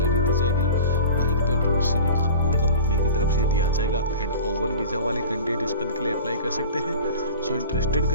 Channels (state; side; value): inverted; both; correlation -0.36